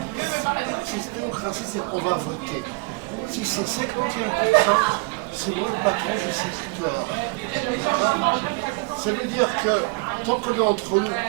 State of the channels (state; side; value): quieter; left; 28.9 dB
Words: Si démocratie, c'est qu'on va voter. Si c'est 51%, c'est moi le patron de cette histoire. Ça veut dire que tant qu'on est entre